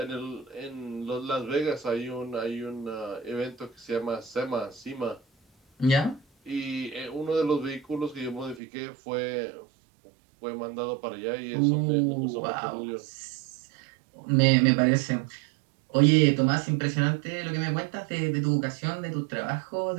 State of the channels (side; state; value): left; drops out; at 8.6 s